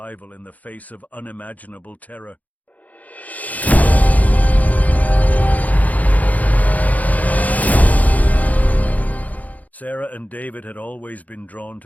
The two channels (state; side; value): late; right; 0.076 ms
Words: in the face of unimaginable terror. Sarah and David had always been drawn